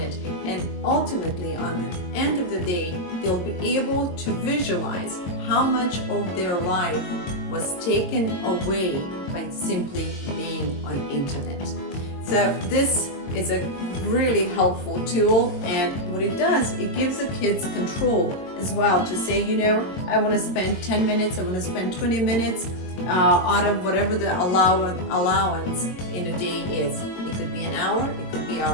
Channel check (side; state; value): right; late; 22 ms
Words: and ultimately on the end of the day, they'll be able to visualize how much of their life was taken away by simply being on internet. So this is a really helpful tool, and what it does, it gives the kids control as well to say, you know, I want to spend 10 minutes, I want to spend 20 minutes out of whatever the allowance in a day is. It could be an hour, it could be an hour